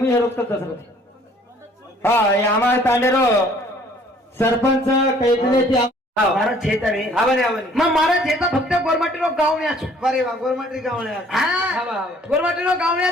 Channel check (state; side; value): normal; both; correlation 0.58